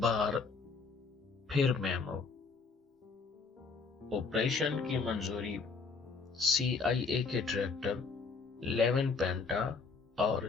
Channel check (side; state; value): right; quieter; 4.7 dB